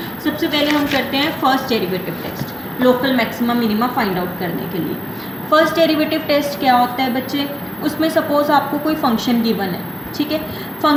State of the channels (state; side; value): identical; both; correlation 1.00